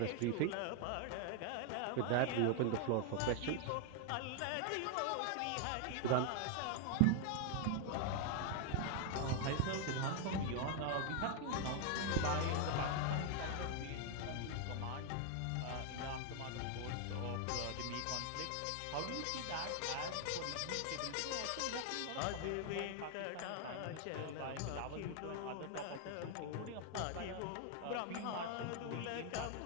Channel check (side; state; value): both; different; correlation 0.00